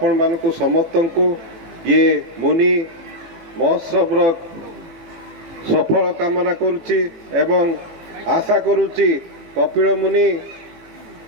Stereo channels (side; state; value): left; late; 18 ms